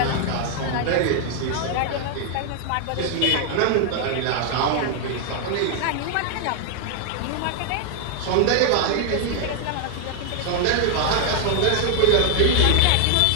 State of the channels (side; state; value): both; different; correlation 0.00